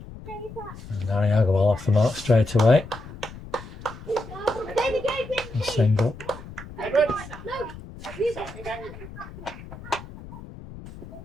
Harry Agarwal off the mark straight away. A single.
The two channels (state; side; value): noise; left; rumble, 15 dB below the sound